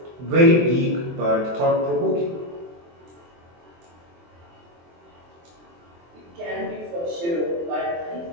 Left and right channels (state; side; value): late; left; 23 ms